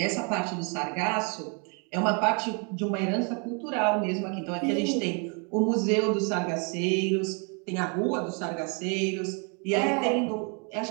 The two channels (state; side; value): quieter; left; 35.8 dB